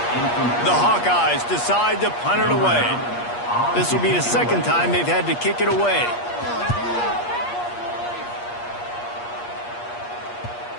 The Hawkeyes decide to punt it away. This will be the 2nd time they've had to kick it away.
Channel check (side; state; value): right; late; 8.4 ms